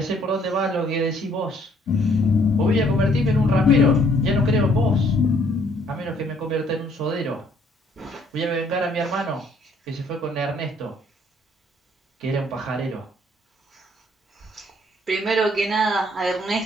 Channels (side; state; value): both; normal; correlation 0.63